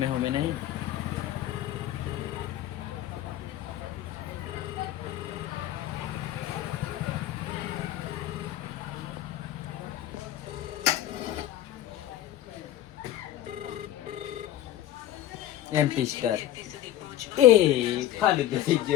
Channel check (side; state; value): right; quieter; 12.9 dB